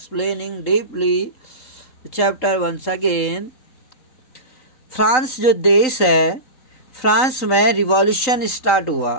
deeply the chapter once again. France जो देश है, फ्रांस में रिवॉल्यूशन स्टार्ट हुआ.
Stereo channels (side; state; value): right; late; 3.9 ms